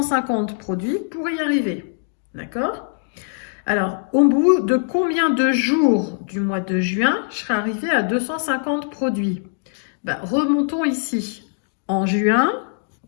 produits pour y arriver. D'accord? Alors, au bout de combien de jours du mois de juin, je serai arrivé à 250 produits? Remontons ici. En juin,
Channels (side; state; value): right; silent; digital silence